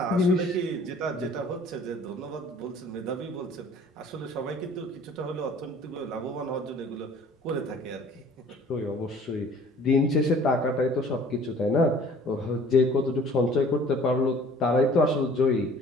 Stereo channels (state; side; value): normal; both; correlation 0.51